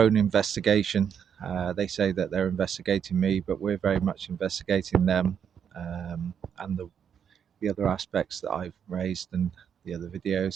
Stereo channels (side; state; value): left; quieter; 7.9 dB